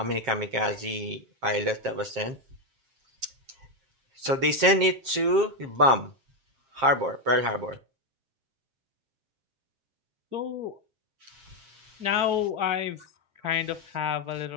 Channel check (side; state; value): left; late; 7.5 ms